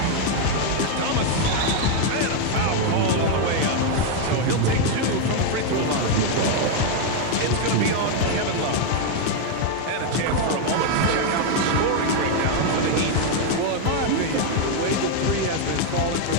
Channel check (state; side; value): different; both; correlation 0.01